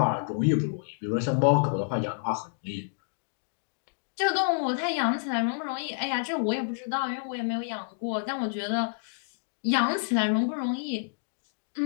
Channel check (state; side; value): silent; right; digital silence